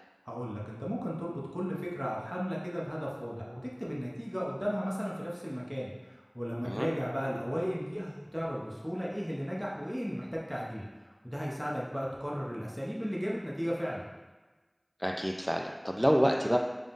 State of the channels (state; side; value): identical; both; correlation 1.00